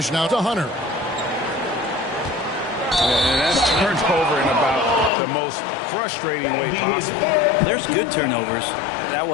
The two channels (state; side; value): drops out; right; at 5.1 s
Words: now to Hunter. And that's turnover in about the most frustrating way possible. There's good turnovers. That